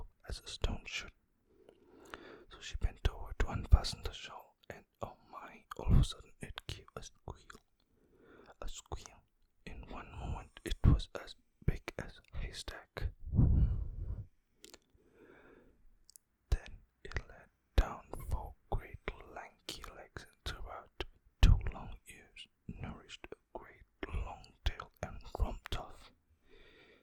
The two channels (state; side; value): identical; both; correlation 1.00